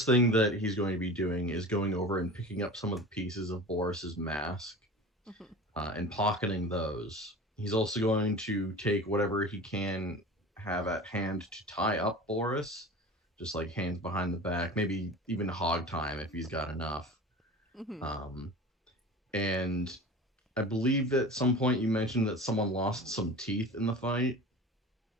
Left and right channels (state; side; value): normal; both; correlation 0.36